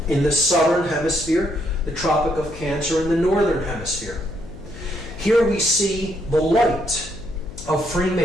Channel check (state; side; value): noise; left; hum, 16 dB below the sound